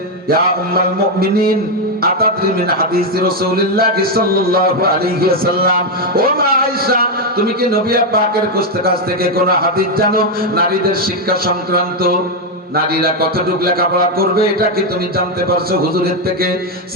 ইয়া উম্মাল মুমিনিন আতাদরি মিন হাদিস রাসূলুল্লাহ সাল্লাল্লাহু আলাইহি ওয়াসাল্লাম, ও মা আয়েশা, তুমি কি নবী পাকের কাছ থেকে কোন হাদিস জানো নারীদের শিক্ষা সংক্রান্ত? নারীরা কতটুকু লেখাপড়া করবে এটা কি তুমি জানতে পারছো হুজুরের থেকে?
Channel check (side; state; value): both; normal; correlation 0.04